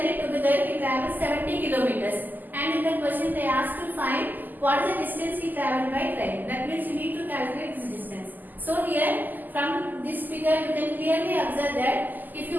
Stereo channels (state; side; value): late; left; 0.086 ms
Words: together he travels 70 kilometers. And in the question they asked to find what is the distance he travelled by train. That means you need to calculate this distance. So here from this figure you can clearly observe that if